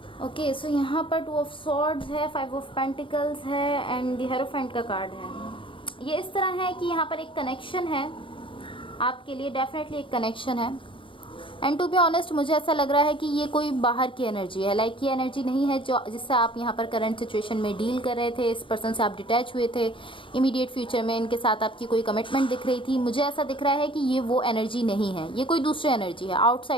Okay, so यहाँ पर 2 ऑफ सॉर्ड्स है, 5 ऑफ पेंटिकल्स है एंड द हेरोफेंट का कार्ड है। ये इस तरह है कि यहाँ पर एक कनेक्शन है आपके लिए, डेफिनेटली एक कनेक्शन है। एंड टू बी ऑनेस्ट मुझे ऐसा लग रहा है कि ये कोई बाहर की एनर्जी है, लाइक ये एनर्जी नहीं है जो जिससे आप यहाँ पर करंट सिचुएशन में डील कर रहे थे, इस पर्सन से आप डिटैच हुए थे, इमीडिएट फ्यूचर में इनके साथ आपकी कोई कमिटमेंट दिख रही थी। मुझे ऐसा दिख रहा है कि ये वो एनर्जी नहीं है, ये कोई दूसरी एनर्जी है,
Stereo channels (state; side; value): late; right; 0.25 ms